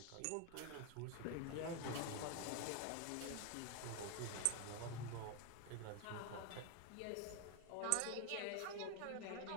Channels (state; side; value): different; both; correlation 0.01